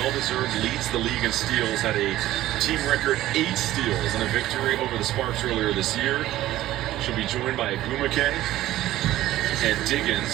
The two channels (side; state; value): left; quieter; 14.8 dB